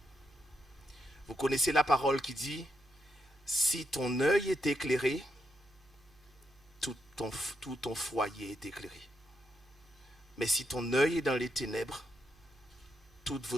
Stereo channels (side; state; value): right; noise; hum, 29 dB below the sound